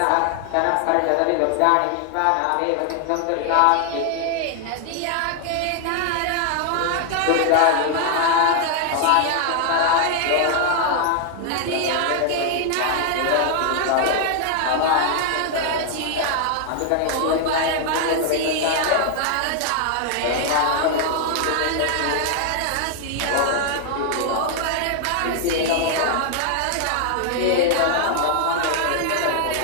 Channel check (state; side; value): different; both; correlation 0.00